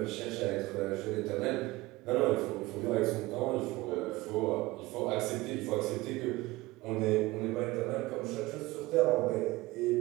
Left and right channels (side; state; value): left; quieter; 20.0 dB